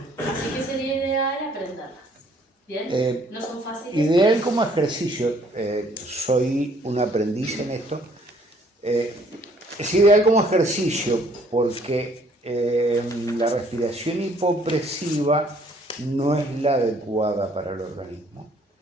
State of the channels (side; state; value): both; normal; correlation 0.61